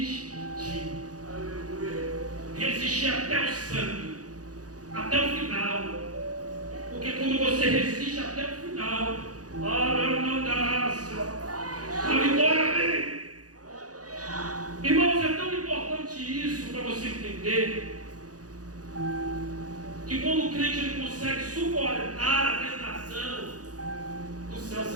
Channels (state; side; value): late; left; 0.67 ms